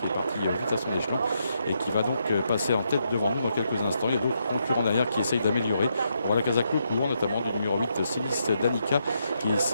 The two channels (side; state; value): both; inverted; correlation -0.79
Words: est parti vite à son échelon et qui va donc passer en tête devant nous dans quelques instants. Il y a d'autres concurrents derrière qui essayent d'améliorer. On voit la Casa Court, notamment du numéro 8, Silis Danica, qui